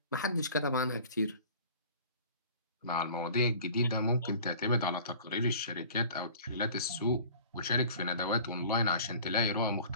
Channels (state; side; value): inverted; both; correlation -0.45